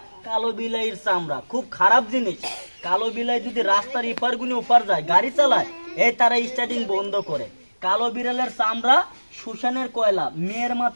কালো বিলাইয়ের চামড়া, খুব খারাপ জিনিস। কালো বিলাই যদি রাস্তার ইপার গুনে ওপার যায়, গাড়ি চালায়, এই তারা স্টার্টিং বন্ধ করে। কালো বিড়ালের চামড়া, শ্মশানের কয়লা, মেয়ের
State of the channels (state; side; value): inverted; both; correlation -1.00